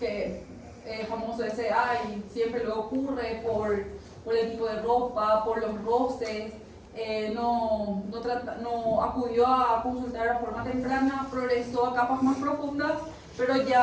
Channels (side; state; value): both; identical; correlation 1.00